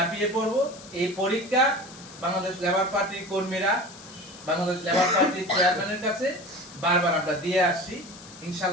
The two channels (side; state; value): left; noise; hiss, 18 dB below the sound